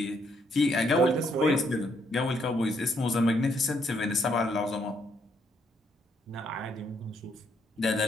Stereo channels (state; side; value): normal; both; correlation 0.72